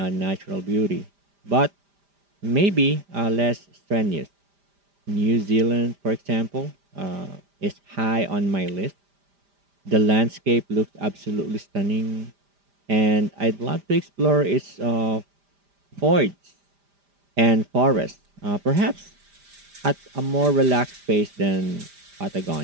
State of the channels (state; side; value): late; left; 5.0 ms